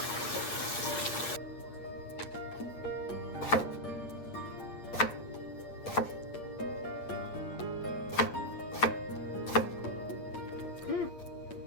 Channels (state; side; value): late; right; 8.6 ms